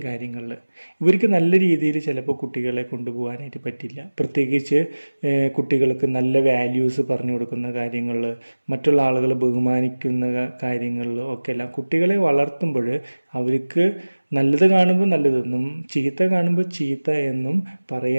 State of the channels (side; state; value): both; inverted; correlation -1.00